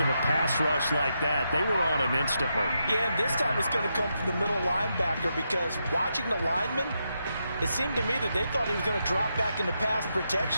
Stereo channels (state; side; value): inverted; both; correlation -0.83